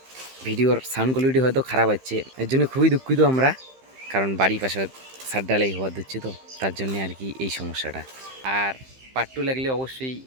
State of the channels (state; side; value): late; left; 15 ms